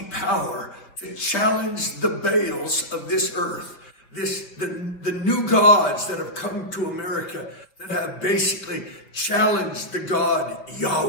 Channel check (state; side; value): late; right; 5.5 ms